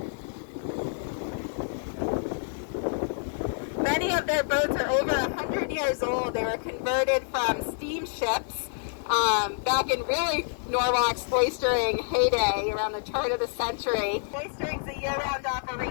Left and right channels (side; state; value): right; silent; 58 dB below the other